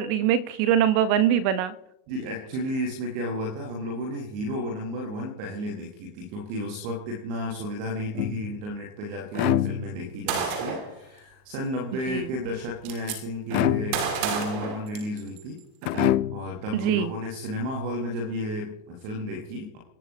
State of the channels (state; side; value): late; left; 38 ms